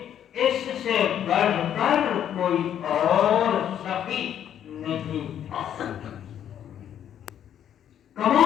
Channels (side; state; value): right; quieter; 9.9 dB